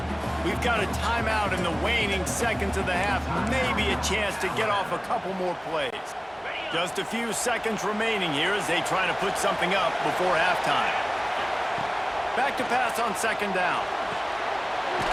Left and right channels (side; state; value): both; identical; correlation 1.00